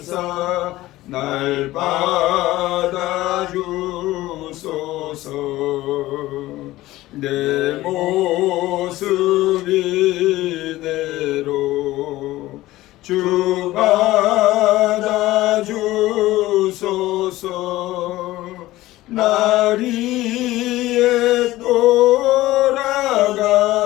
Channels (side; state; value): right; quieter; 16.9 dB